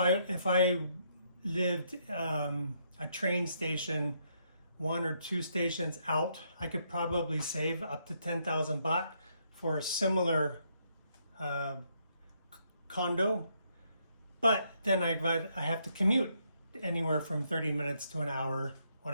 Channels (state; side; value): inverted; both; correlation -0.74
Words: lived a train station 1 or 2 stations out. I could probably save up to 10,000 baht for a similar condo, but then I have to commute anywhere from 30 minutes to an hour on